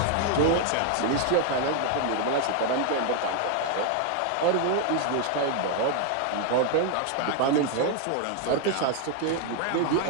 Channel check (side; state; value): both; different; correlation 0.00